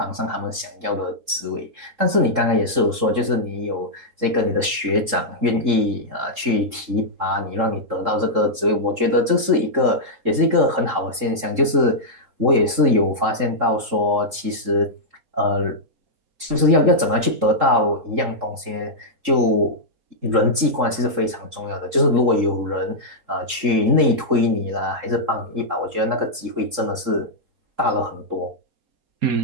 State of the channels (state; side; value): late; left; 3.7 ms